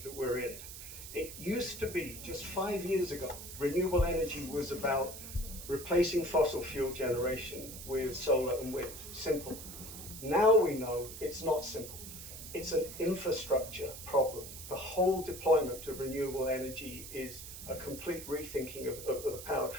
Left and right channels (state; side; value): noise; right; hiss, 11 dB below the sound